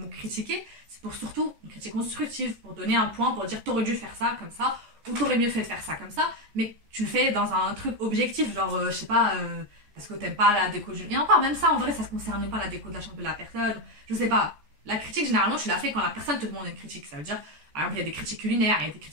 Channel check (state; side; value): late; left; 14 ms